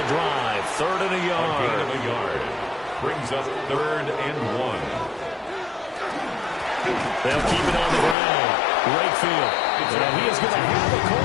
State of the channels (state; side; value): drops out; right; at 8.2 s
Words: drive. 3rd and a yard. A gain of a yard. Brings up 3rd and 1. They'll keep it on the ground. Wakefield. And he is going to have the